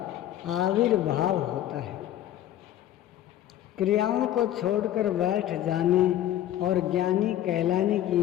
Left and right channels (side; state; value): right; quieter; 12.4 dB